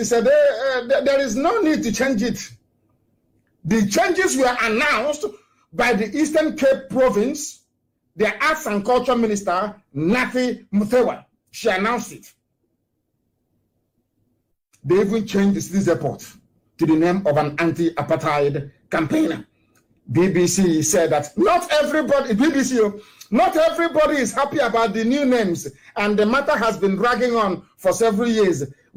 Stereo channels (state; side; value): identical; both; correlation 1.00